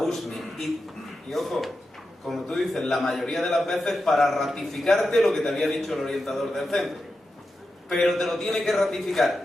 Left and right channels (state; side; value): normal; both; correlation 0.90